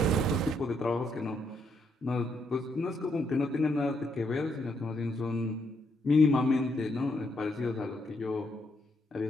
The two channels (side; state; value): both; normal; correlation 0.76